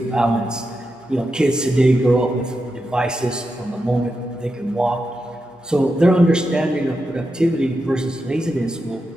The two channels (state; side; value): normal; both; correlation 0.87